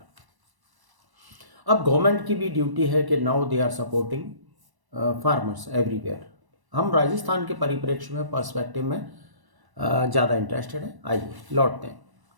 अब गवर्नमेंट की भी ड्यूटी है कि now they are supporting farmers everywhere. हम राजस्थान के परिप्रेक्ष्य में, पर्सपेक्टिव में ज़्यादा इंटरेस्टेड है। आइए लौटते हैं।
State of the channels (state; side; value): late; left; 1.1 ms